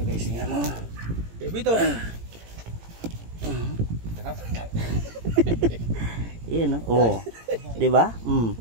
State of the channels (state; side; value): late; left; 18 ms